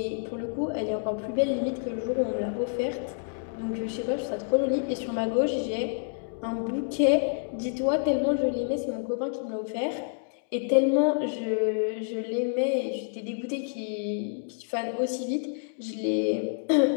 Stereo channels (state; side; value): silent; right; digital silence